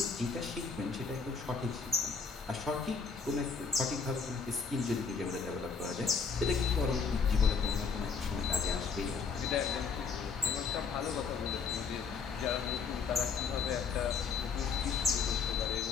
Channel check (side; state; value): right; quieter; 5.5 dB